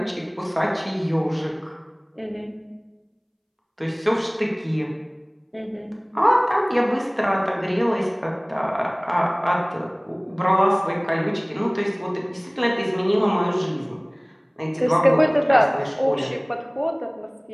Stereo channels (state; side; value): identical; both; correlation 1.00